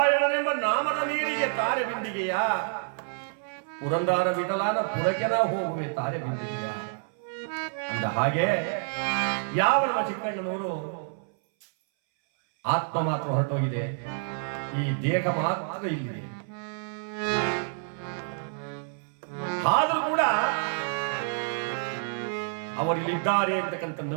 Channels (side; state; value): left; silent; 58 dB below the other